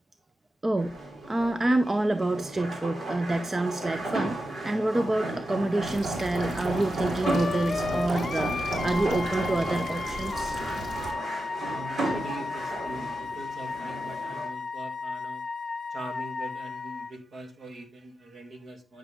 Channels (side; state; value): both; normal; correlation 0.90